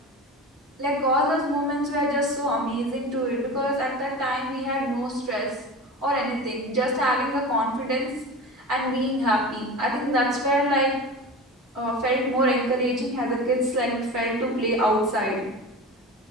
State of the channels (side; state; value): both; normal; correlation 0.31